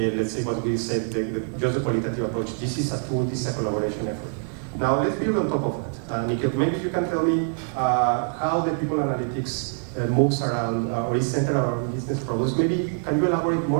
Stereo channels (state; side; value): silent; left; 62 dB below the other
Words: say what we said, just the qualitative approach. This is a tool, this is a collaboration effort. Now let's build on top of that. Nikhil, maybe you can tell me how the people analytics moves around or is centered around business problems. Maybe can you elaborate